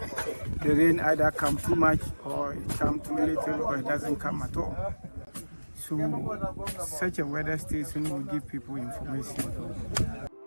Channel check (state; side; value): inverted; both; correlation -1.00